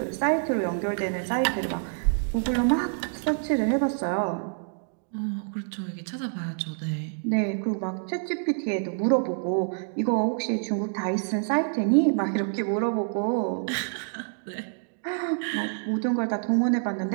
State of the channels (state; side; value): silent; left; digital silence